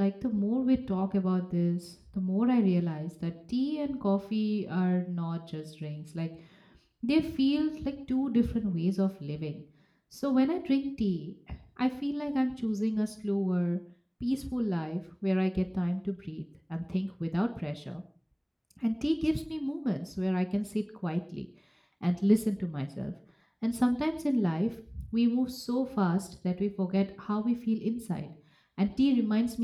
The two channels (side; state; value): both; identical; correlation 1.00